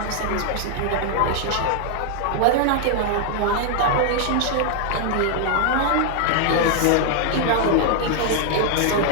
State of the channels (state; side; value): different; both; correlation 0.00